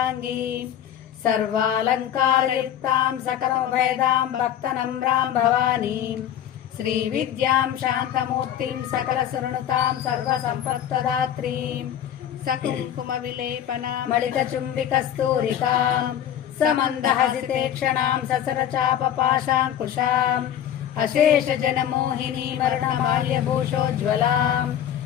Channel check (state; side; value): quieter; right; 10.3 dB